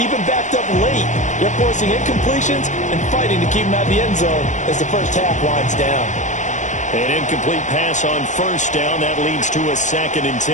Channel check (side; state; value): right; late; 0.35 ms